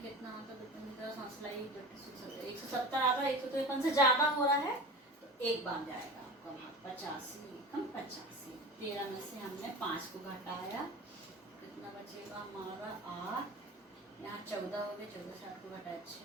कितना होता है, 170 आ रहा है, 153 से ज्यादा हो रहा है तो एक बार जाएगा आपका भाग। 85 एकम 85। 13 में से हमने 5 को घटाया, कितना बचेगा हमारा? 8। यहाँ 14 हो गए, 14 से 8 को घटाया 6,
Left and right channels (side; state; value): both; normal; correlation 0.33